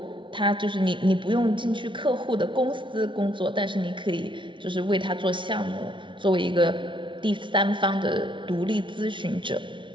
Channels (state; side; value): late; left; 0.24 ms